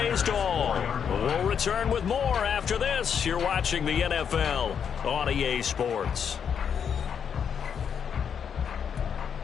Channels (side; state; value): right; quieter; 7.5 dB